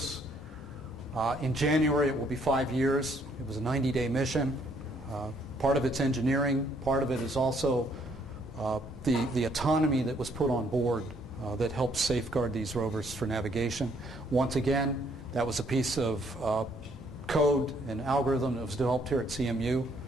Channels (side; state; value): both; normal; correlation 0.67